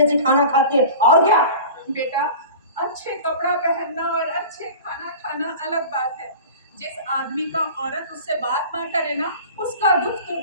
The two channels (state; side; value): inverted; both; correlation -0.37